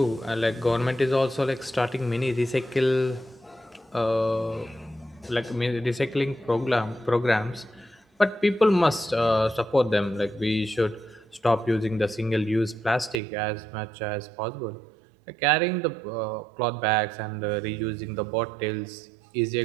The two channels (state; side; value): drops out; left; at 13.2 s